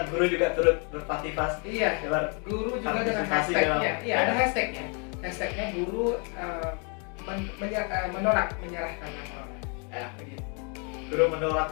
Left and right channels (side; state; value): right; quieter; 36.8 dB